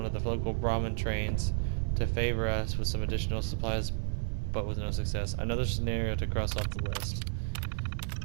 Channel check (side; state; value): left; silent; 56 dB below the other